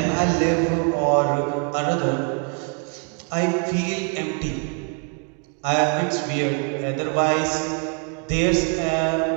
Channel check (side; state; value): left; quieter; 38.5 dB